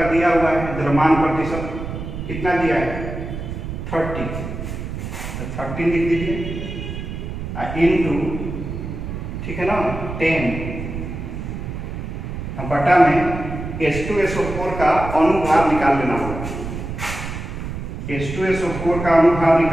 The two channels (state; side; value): noise; right; rumble, 7 dB below the sound